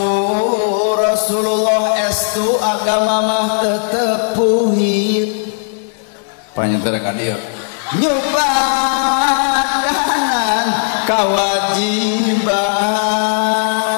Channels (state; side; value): silent; right; digital silence